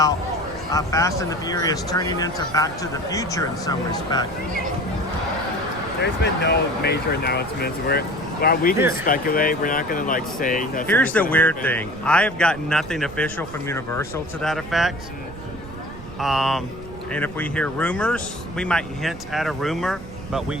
Fast and the Furious turning into Back to the Future in some respect? There's been no major announcements. While we can speculate, we're not going to like say that. Here's the weird thing. I have gotten nothing official from Universal to that effect. And if we hear rumors, we might hint at a rumor, but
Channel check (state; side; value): noise; right; rumble, 15 dB below the sound